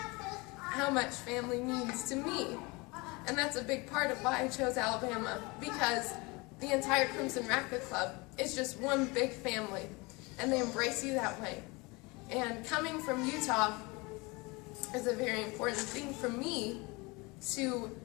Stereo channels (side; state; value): right; quieter; 25.7 dB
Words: how much family means to me. And that's a big part of why I chose Alabama, because the entire Crimson Racquet Club is just one big family, and they embrace you that way. And coming from Utah is a very important thing for me, to